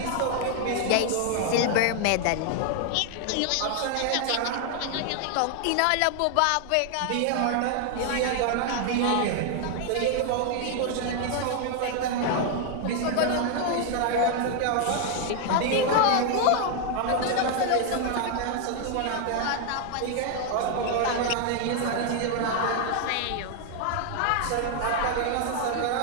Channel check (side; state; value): both; different; correlation 0.00